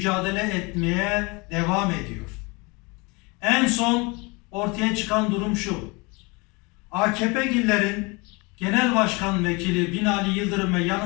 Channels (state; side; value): quieter; right; 27.6 dB